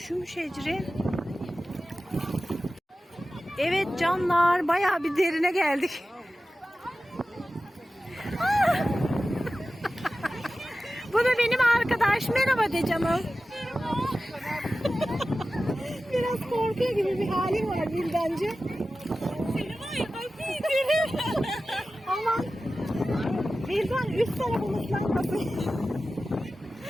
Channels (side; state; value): both; normal; correlation 0.95